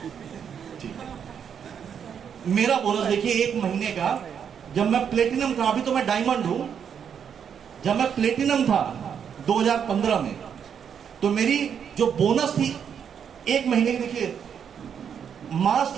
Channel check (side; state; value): left; quieter; 7.8 dB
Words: ठीक है, मेरा बोनस देखिए 1 महीने का, जब मैं प्लेटिनम था, अभी तो मैं डायमंड हूं, जब मैं प्लेटिनम था 2015 में, तो मेरी जो बोनस थी 1 महीने की, देखिए मार्च